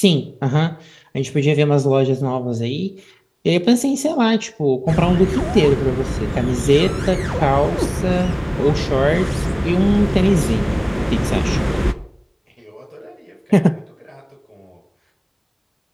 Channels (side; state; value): both; identical; correlation 1.00